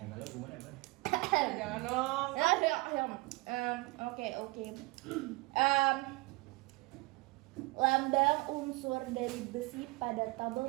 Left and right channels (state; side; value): quieter; left; 24.1 dB